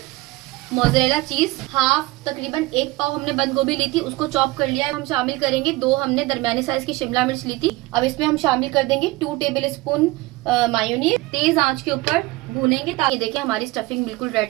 मोज़रेला चीज। हाफ तकरीबन 1 पाव हमने बंद गोभी ली थी, उसको चॉप कर लिया है। हम शामिल करेंगे 2 हमने दरमियाने साइज की शिमला मिर्च ली थी। अब इसमें हम शामिल कर देंगे 2 टेबल स्पून मायोनीज। तेज आंच के ऊपर भूनेंगे ताकि देखिए हमारी स्टफिंग बिल्कुल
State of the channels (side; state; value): left; quieter; 20.4 dB